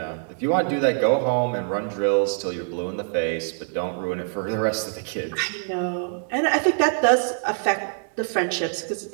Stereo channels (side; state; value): left; silent; 62 dB below the other